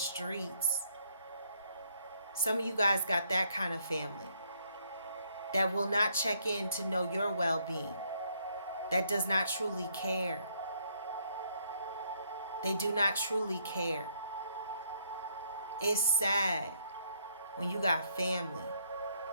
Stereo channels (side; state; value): both; inverted; correlation -0.71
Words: Some of you guys got that kind of family that will not check in to know your well-being, that does not truly care. They do not truly care. It's sad when you got family